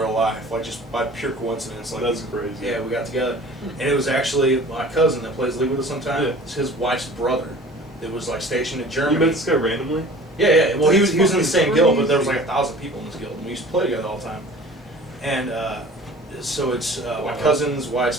life, like, just by pure coincidence. Like, That's crazy. yeah, we got together. And it was actually my cousin that plays League with us sometimes. Yeah. It's his wife's brother that was, like, stationed in You Germany. met this guy randomly? Yeah. Well, he was in the That's same fucking guild, but there was crazy. like 1,000 people in this guild, and we used to play together all the time. And so it's my Wow. cousin's wife's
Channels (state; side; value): normal; both; correlation 0.45